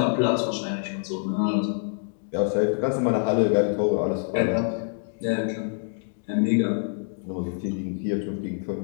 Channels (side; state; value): right; silent; 61 dB below the other